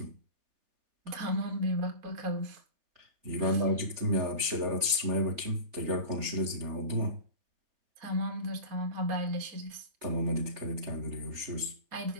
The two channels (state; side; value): late; left; 3.4 ms